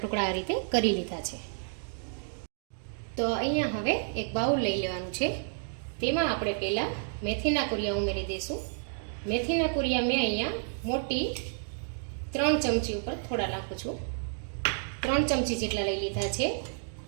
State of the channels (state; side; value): silent; left; digital silence